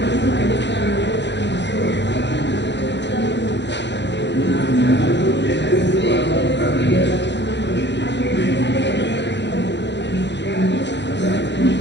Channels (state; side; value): late; right; 0.52 ms